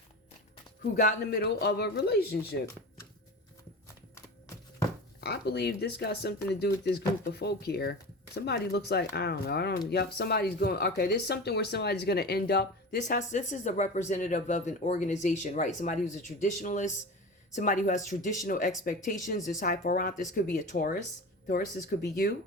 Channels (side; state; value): both; normal; correlation 0.30